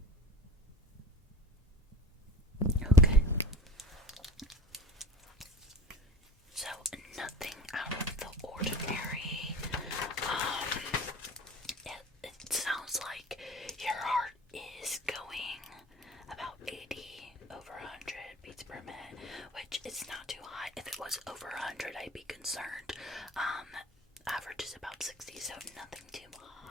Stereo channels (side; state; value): both; normal; correlation 0.41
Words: Okay. So nothing out of the ordinary. It sounds like your heart is going about 80 over 100 beats per minute, which is not too high. If it was over 100, I'd be concerned. Average is about 60, so nothing too